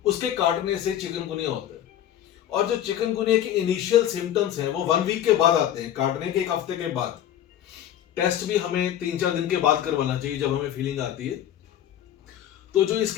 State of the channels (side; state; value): right; quieter; 11.0 dB